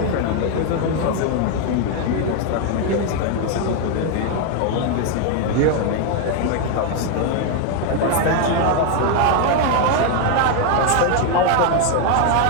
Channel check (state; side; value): different; both; correlation 0.00